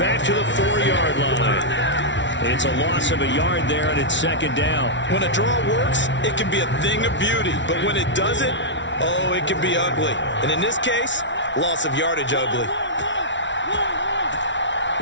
to the 4-yard line. It's a loss of a yard there, and it's 2nd down. When a draw works, it can be a thing of beauty. But when it doesn't, oh, it can be ugly. And in this case, loss of yardage ugly.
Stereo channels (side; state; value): right; late; 0.54 ms